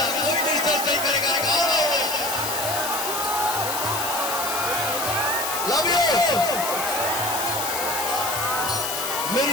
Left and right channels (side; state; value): left; noise; hiss, 3 dB below the sound